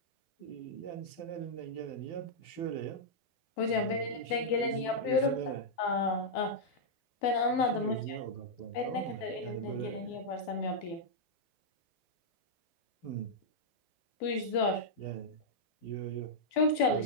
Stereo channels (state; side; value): late; right; 12 ms